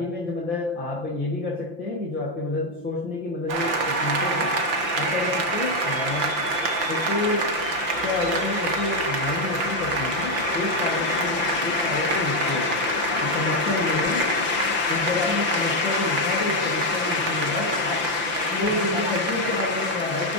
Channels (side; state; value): left; late; 5.8 ms